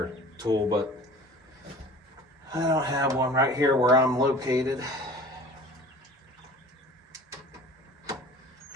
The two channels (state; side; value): normal; both; correlation 0.44